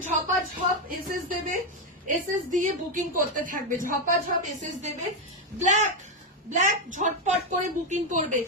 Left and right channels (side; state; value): both; normal; correlation 0.05